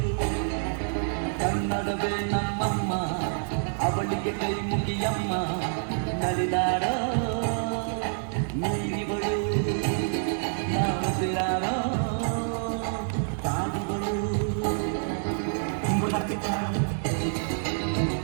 ಕನ್ನಡವೇ ನಮ್ಮಮ್ಮ ಅವಳಿಗೆ ಕೈ ಮುಗಿಯಮ್ಮ ನಲಿದಾಡೋ ನೀರಿಗಳು ನಾವು ಸಿರಾಡೋ ಸಾಧುಗಳು.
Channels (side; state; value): left; silent; digital silence